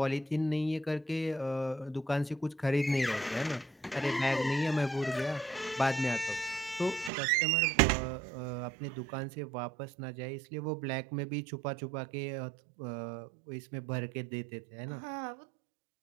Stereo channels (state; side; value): drops out; left; at 7.1 s